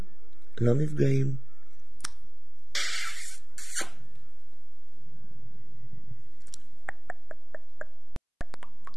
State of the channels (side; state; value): both; identical; correlation 1.00